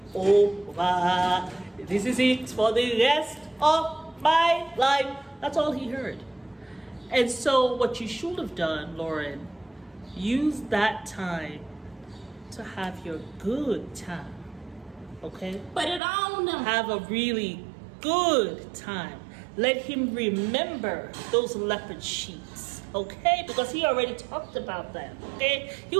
over. This is it for the rest of my life. That's all he heard. And so what you should have done, Loren, use that time to have your good time. Okay? Put it on him. Have a really good time. Let him remember those leopard sheets, okay? Because he already talked about that, okay? He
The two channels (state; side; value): drops out; left; at 16.0 s